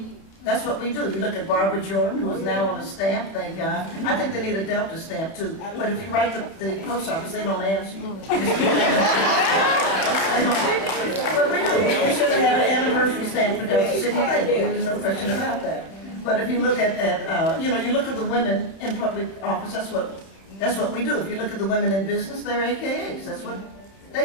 do. You look at Barbara Jordan, who is now on a stamp, thank God. I think they need a Delta stamp too, but if you write the post office, they don't answer you. But we do. We should have had an anniversary stamp for Delta Sigma Theta. There's no question about that. But if you look at you know, you look at the women in public office, that's what we do. If you look at the women in business, they're AKAs. That's what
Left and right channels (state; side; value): late; right; 30 ms